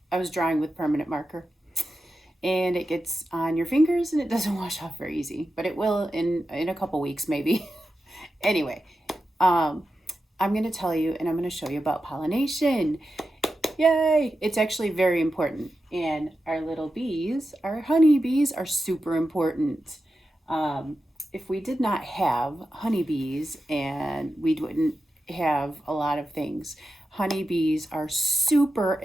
drawing with permanent marker, and it gets on your fingers and it doesn't wash off very easy, but it will in a couple weeks maybe. Anyway, um, I'm going to tell you and I'm going to show you about pollination. Yay! It's actually very important. And our little bees, our honeybees, are super important. Um, if we did not have honeybees, and we wouldn't have a lot of things. Honeybees are super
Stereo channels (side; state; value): both; normal; correlation 0.91